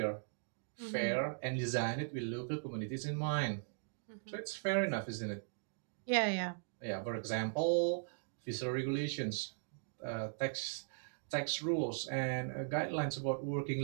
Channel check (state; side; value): silent; left; digital silence